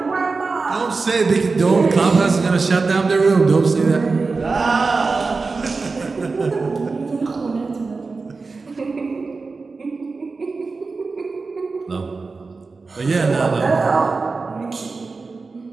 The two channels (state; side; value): quieter; left; 4.1 dB